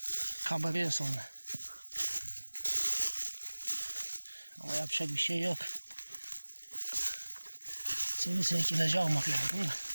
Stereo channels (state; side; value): inverted; both; correlation -1.00